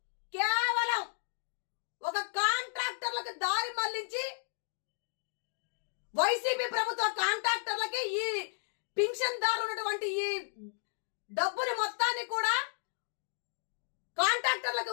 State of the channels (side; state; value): right; silent; digital silence